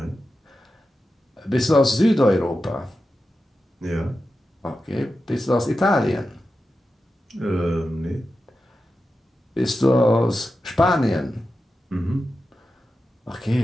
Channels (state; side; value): normal; both; correlation 0.91